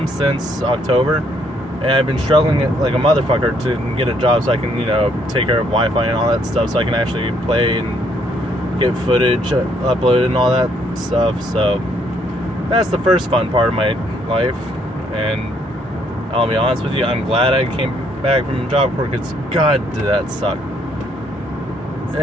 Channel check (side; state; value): both; normal; correlation 0.69